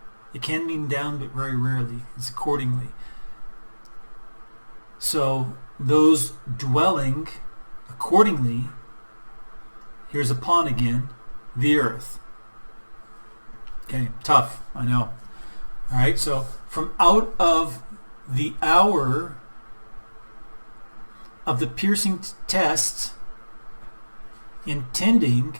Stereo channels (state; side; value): inverted; both; correlation -1.00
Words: It can mean down, but very rarely. It's accordingly. So, those dwelling accordingly, here's upon again, the earth. Okay, tough, I know. All right, so from out of the hour of the piercing test, intending